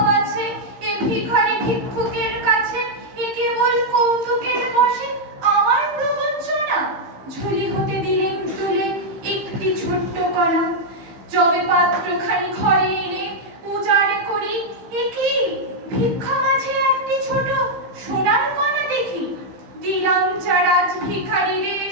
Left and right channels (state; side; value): late; left; 15 ms